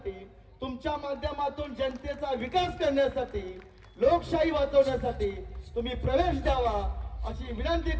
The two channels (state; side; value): identical; both; correlation 1.00